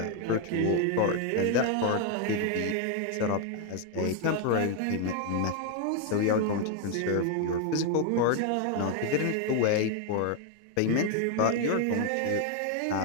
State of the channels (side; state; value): both; different; correlation 0.00